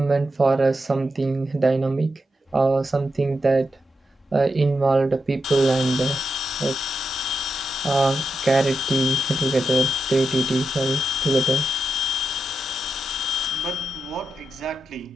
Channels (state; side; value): normal; both; correlation 0.87